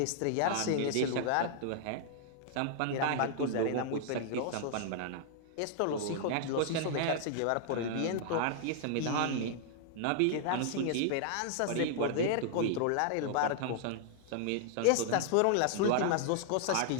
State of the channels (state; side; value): different; both; correlation -0.01